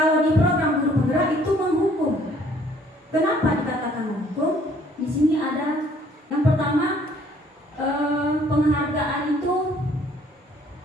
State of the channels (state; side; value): normal; both; correlation 0.60